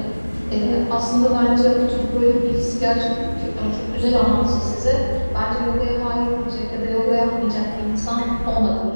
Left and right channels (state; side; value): inverted; both; correlation -1.00